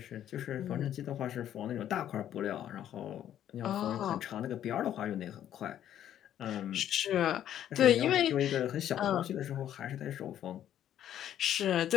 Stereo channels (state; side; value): quieter; right; 10.9 dB